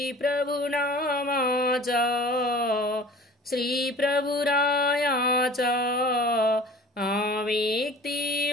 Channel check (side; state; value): both; normal; correlation 0.44